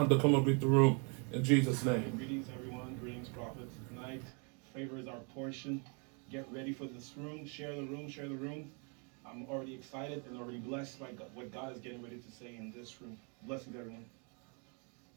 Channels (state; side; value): quieter; left; 36.0 dB